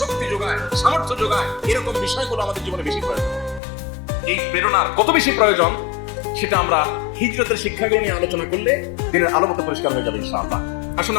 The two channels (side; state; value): right; drops out; at 3.6 s